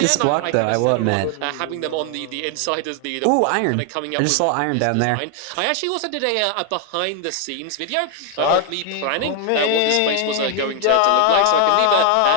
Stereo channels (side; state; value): both; different; correlation 0.00